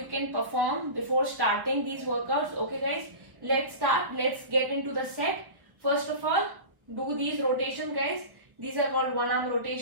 can perform before starting these workouts. Okay guys, let's start. Let's get into the set. First of all, do these rotations guys. These are called one arm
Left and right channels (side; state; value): left; late; 1.1 ms